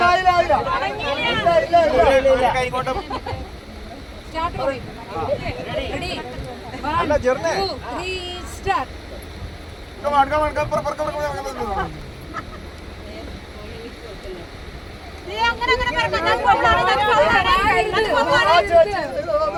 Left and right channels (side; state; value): both; identical; correlation 1.00